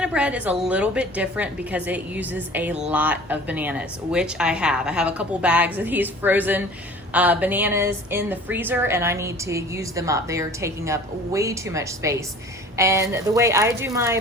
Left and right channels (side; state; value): both; normal; correlation 0.45